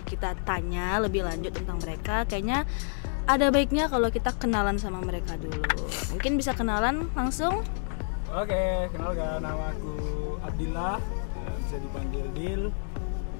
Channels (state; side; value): silent; right; 59 dB below the other